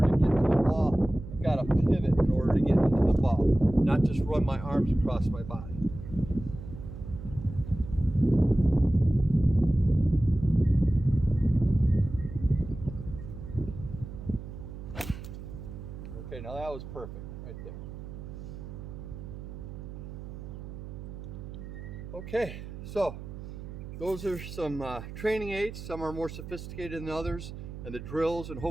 to get to the ball, I've got to pivot in order to get into the ball, not just run my arms across my body. Okay, now that was perfect right there. Okay, so those are some training aids. Some are more sophisticated than others, and the drills, and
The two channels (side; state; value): right; noise; hum, 11 dB below the sound